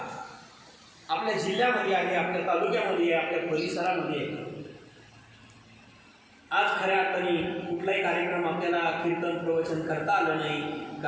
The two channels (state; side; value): identical; both; correlation 1.00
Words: आपल्या जिल्ह्यामध्ये आहे, आपल्या तालुक्यामध्ये आहे, आपल्या परिसरामध्ये आहे. आज खऱ्या अर्थाने कुठलाही कार्यक्रम आपल्याला कीर्तन प्रवचन करता आलं नाही,